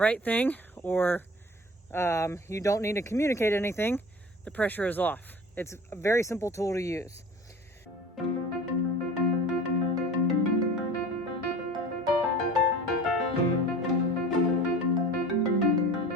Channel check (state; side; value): normal; both; correlation 0.41